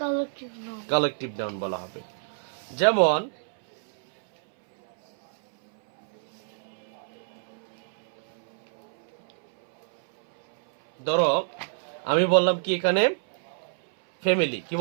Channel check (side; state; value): left; silent; 60 dB below the other